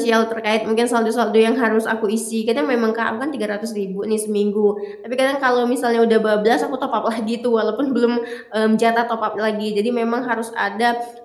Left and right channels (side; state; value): both; identical; correlation 1.00